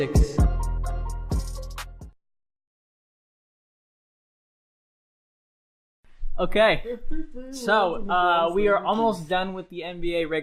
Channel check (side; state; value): both; identical; correlation 1.00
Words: Okay, so we are almost done with the NBA